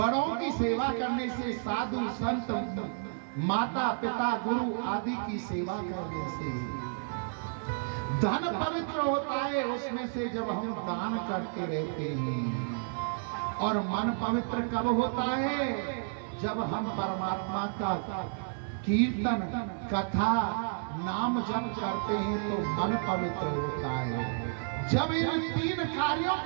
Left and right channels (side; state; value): left; silent; digital silence